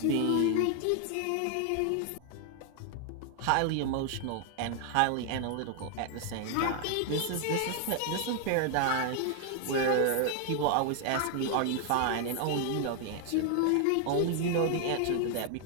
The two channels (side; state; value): both; different; correlation 0.00